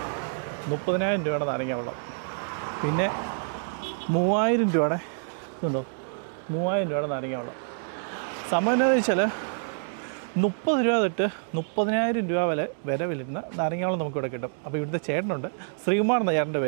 30,000 രൂപയുടെ നാരങ്ങ വെള്ളം. പിന്നെ 3,000 രൂപയുടെ ഇതുണ്ടോ, 3,000 രൂപയുടെ നാരങ്ങ വെള്ളം. സംഭവം എന്താണെന്ന് വെച്ചാൽ 30 രൂപ തൊട്ട് 30,000 രൂപ വില വരുന്ന നാരങ്ങാവെള്ളം നമുക്കിവിടെ കിട്ടും. അപ്പോൾ ഇവിടുത്തെ ചേട്ടനുണ്ട്, ശ്രീകുമാർ എന്ന ചേട്ടൻ്റെ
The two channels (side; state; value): left; silent; digital silence